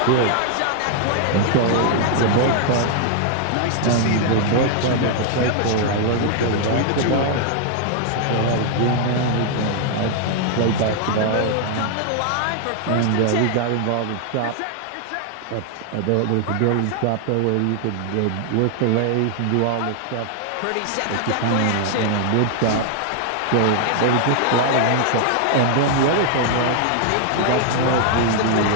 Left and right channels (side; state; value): both; different; correlation 0.00